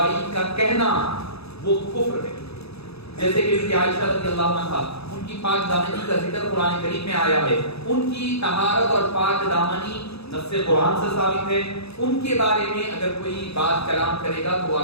کا کہنا وہ کفر ہے. جیسے کہ عائشہ رضی اللہ عنہا، ان کی پاک دامنی کا ذکر قرآن کریم میں آیا ہے، ان کی طہارت اور پاک دامنی نص قرآن سے ثابت ہے. ان کے بارے میں اگر کوئی بات کلام کرے گا تو وہ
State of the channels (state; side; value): late; right; 0.78 ms